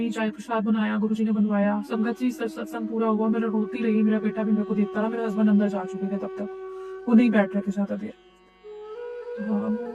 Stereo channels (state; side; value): identical; both; correlation 1.00